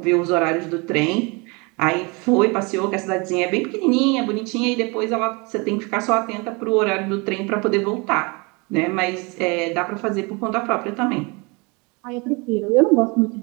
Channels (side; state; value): left; quieter; 28.5 dB